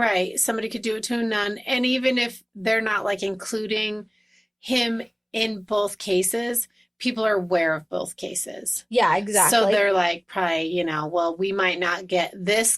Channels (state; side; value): identical; both; correlation 1.00